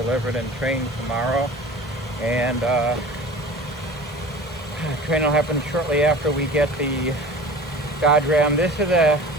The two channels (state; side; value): normal; both; correlation 0.39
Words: and trained tomorrow. And training will happen shortly after we get the Dodge Ram. This is a